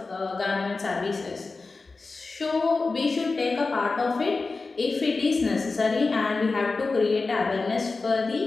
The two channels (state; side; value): quieter; right; 3.9 dB